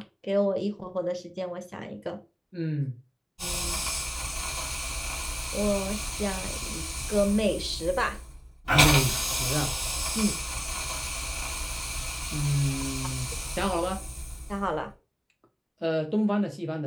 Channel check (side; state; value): both; identical; correlation 1.00